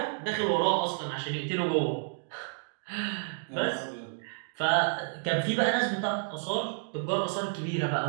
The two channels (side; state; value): left; silent; digital silence